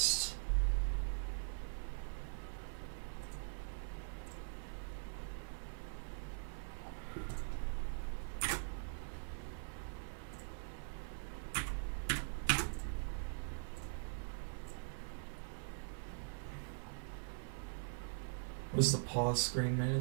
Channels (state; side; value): silent; left; digital silence